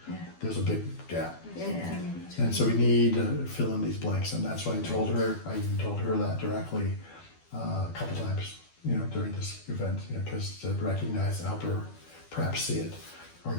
there's a big gap. Yeah. And so we need to fill in these blanks, and that's why I even told her that directly a couple times, you know, during this event, you know, because to recognize and help her perhaps see it or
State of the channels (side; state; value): right; late; 12 ms